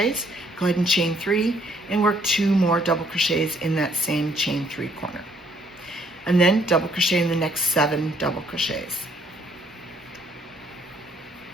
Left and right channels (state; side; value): normal; both; correlation 0.66